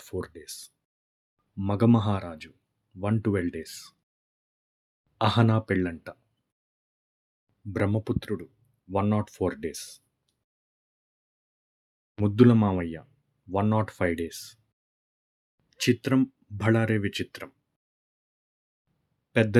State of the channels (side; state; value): both; identical; correlation 1.00